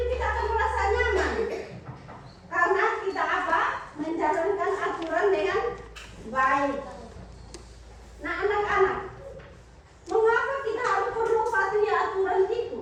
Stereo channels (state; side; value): identical; both; correlation 1.00